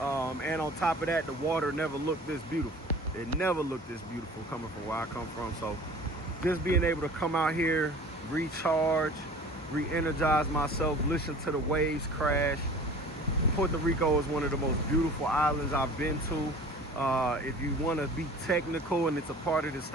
on top of that, the water never looked this beautiful. It never looked this beautiful coming from where I come from. So just being able to come out here, recharge, re-energize myself, listen to the waves crash. Puerto Rico is one of the most beautiful islands I've been to. If you want to be technical, and it's a part of the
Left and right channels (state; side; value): normal; both; correlation 0.44